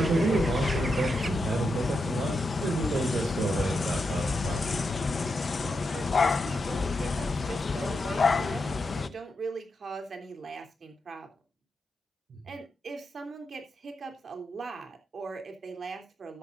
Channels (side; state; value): both; normal; correlation 0.86